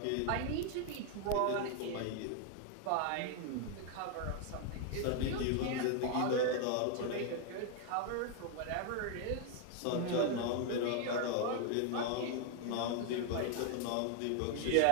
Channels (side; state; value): both; different; correlation 0.00